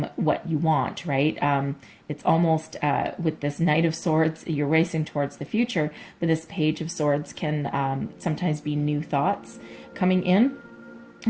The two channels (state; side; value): identical; both; correlation 1.00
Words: what you want, right? It's almost with this Knight of Swords, you're racing towards the future, but this Page of Swords can sometimes be new thoughts coming in.